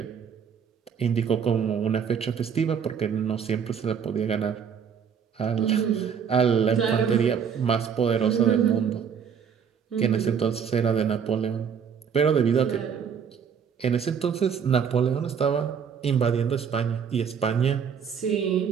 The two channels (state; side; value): quieter; left; 7.2 dB